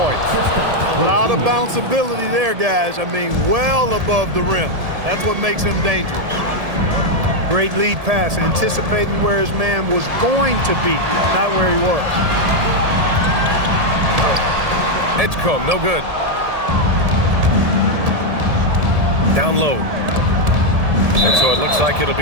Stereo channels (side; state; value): left; late; 1.7 ms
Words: A lot of bounceability there, guys. I mean, well above the rim. That's what makes him dangerous. Great lead pass, anticipating where his man was going to be, not where he was. Edgecombe, no good. Down low. And so it looks like it'll